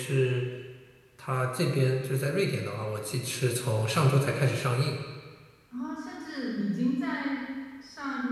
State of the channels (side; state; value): both; identical; correlation 1.00